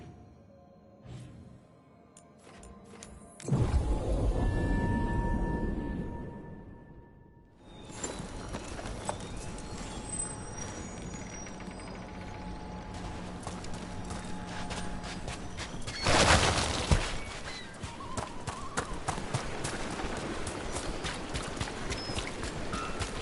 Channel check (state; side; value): identical; both; correlation 1.00